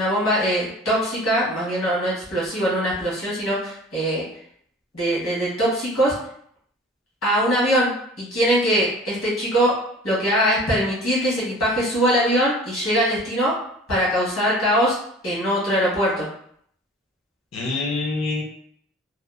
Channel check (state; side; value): normal; both; correlation 0.44